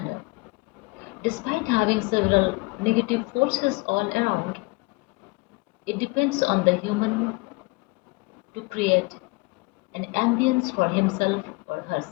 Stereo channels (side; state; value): right; quieter; 26.1 dB